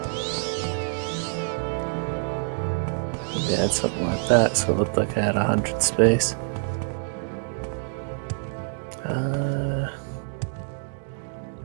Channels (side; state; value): left; silent; 61 dB below the other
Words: Maybe I had something like that, so it looked like I had 100 space. Yeah,